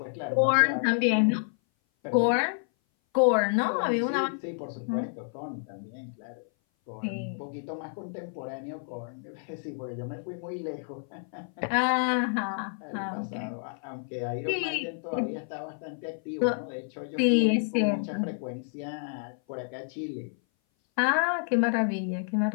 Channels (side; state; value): right; silent; 57 dB below the other